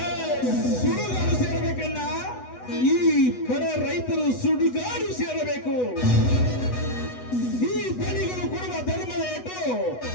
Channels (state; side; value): late; right; 8.1 ms